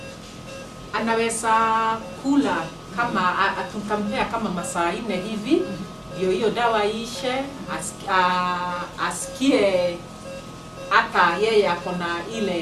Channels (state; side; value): identical; both; correlation 1.00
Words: anaweza kula kama atukamea kama masaa 4 hivi ndio hiyo dawa ishe, asikie hata yeye akona